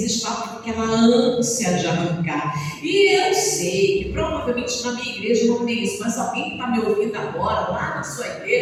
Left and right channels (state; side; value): identical; both; correlation 1.00